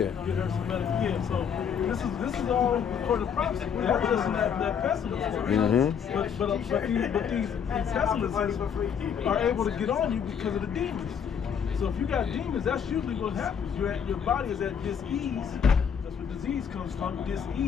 Get her some medical. Yeah. So this is all according to prophecy. That doesn't that pessimist. But these pessimists are able to get on you because of the demons. So if you got demons, that's usually what happens. Your body is at dis-ease. That's where disease comes from,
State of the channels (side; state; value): right; quieter; 7.5 dB